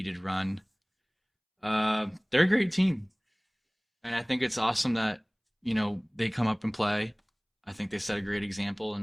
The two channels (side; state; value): both; identical; correlation 1.00